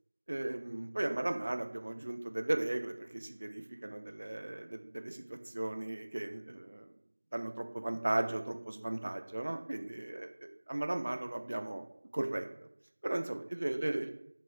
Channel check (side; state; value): both; inverted; correlation -1.00